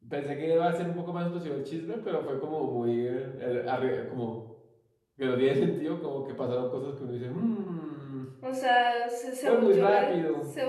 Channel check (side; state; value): both; identical; correlation 1.00